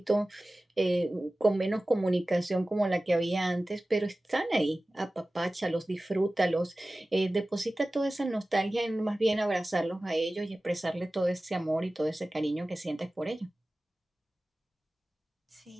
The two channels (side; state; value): both; normal; correlation 0.97